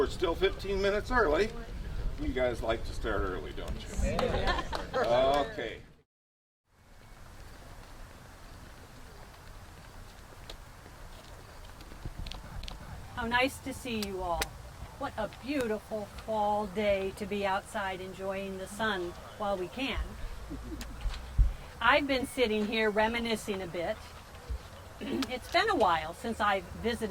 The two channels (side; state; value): both; identical; correlation 1.00